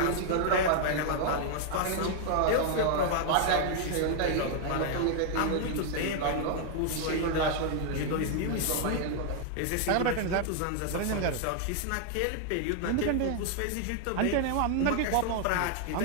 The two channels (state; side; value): different; both; correlation 0.00